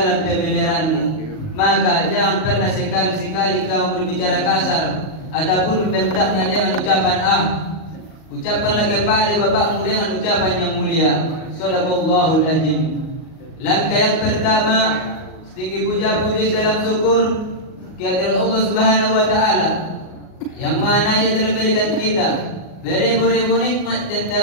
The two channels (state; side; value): late; right; 38 ms